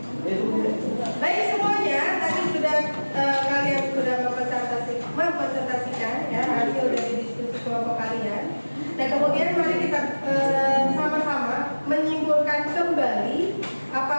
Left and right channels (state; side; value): inverted; both; correlation -1.00